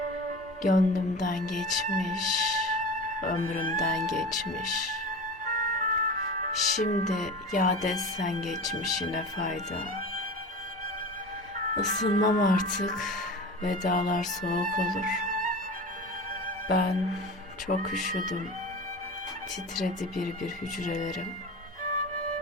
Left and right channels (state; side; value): normal; both; correlation 0.32